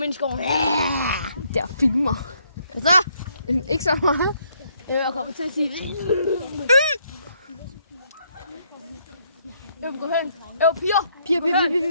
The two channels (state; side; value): inverted; both; correlation -0.71